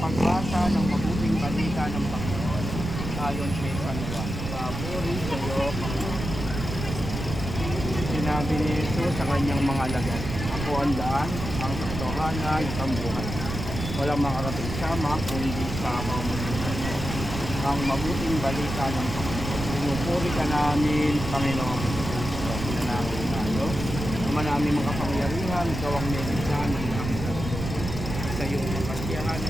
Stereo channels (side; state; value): right; noise; rumble, 6 dB below the sound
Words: ng mabuting balita ng Panginoon ayon kay San Juan. Papuri sa iyo, Panginoon. Sinabi ni Jesus sa kanyang mga alagad, ako ang daan, ang katotohanan, ang buhay. Walang makarating sama kung hindi sa pamamagitan mo. Ang mabuting balita ng Panginoon. Pinupuri ka namin, Panginoon. Pinanangin tayo. Naman namin makapangyarihan, ikaw ang nilisan ng aming sarili. Sa iyong makasiyahan